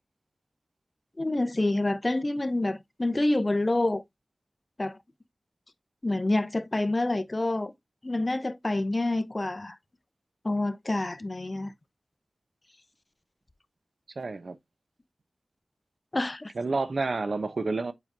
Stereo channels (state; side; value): normal; both; correlation 0.98